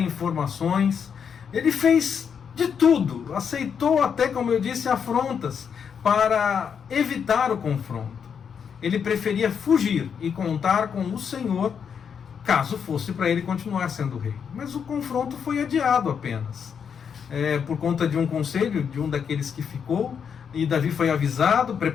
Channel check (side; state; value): right; quieter; 7.1 dB